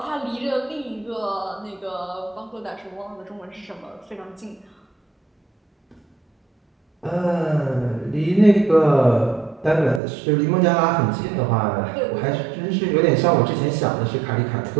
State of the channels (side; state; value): left; drops out; at 10.0 s